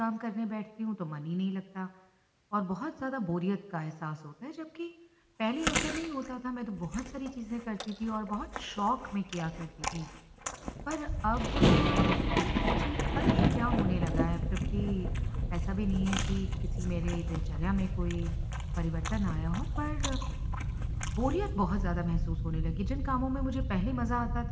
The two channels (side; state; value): both; identical; correlation 1.00